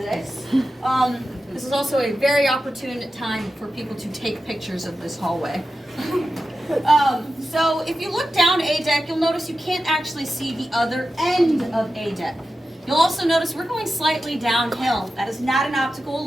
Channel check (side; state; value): both; normal; correlation 0.92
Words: This is also a very opportune time for people to take pictures of this hallway. So if you look down A deck, you'll notice you can't actually see the other end of A deck. You'll also notice we're going slightly downhill. That is not an optical